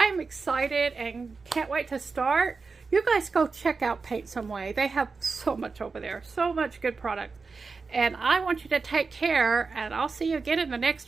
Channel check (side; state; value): left; quieter; 4.5 dB